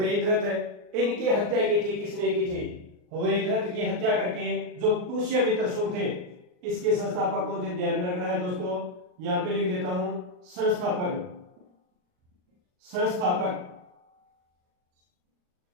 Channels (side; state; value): left; late; 39 ms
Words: इनकी हत्या की थी। किसने की थी? वृद्धरथ की हत्या करके जो पुष्यमित्र शुंग थे, इसके संस्थापक कौन थे? ध्यान में रखना है दोस्तों, यहां पे लिख देता हूं संस्थापक।